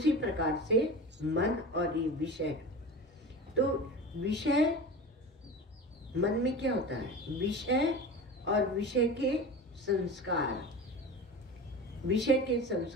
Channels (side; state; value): both; normal; correlation 0.31